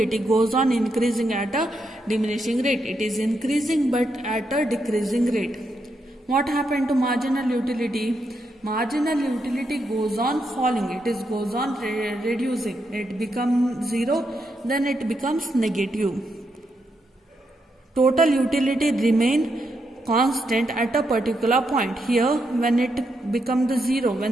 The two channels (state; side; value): normal; both; correlation 0.81